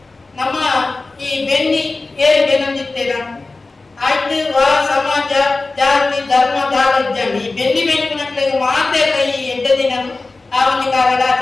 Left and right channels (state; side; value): quieter; right; 3.5 dB